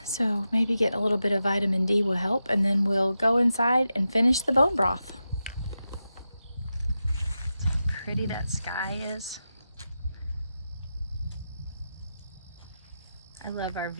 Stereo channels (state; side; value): inverted; both; correlation -0.90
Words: So maybe get a little bit of vitamin D will help, and then we'll go inside and finish the bone broth. How pretty that sky is. I love our